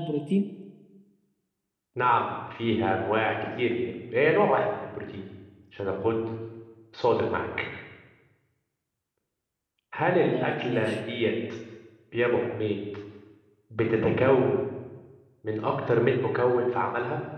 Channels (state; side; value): identical; both; correlation 1.00